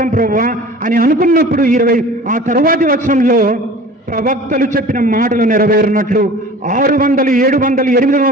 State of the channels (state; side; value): normal; both; correlation 0.42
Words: ప్రభువా అని అనుకున్నప్పుడు ఆ తరువాతి వచనంలో ప్రవక్తలు చెప్పిన మాటలు నెరవేరినట్లు, 600, 700,